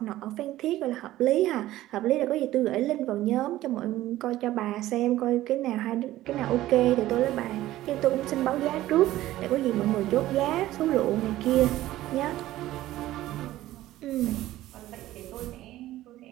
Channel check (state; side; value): quieter; left; 15.2 dB